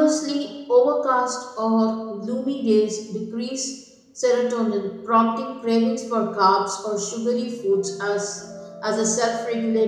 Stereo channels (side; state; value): both; identical; correlation 1.00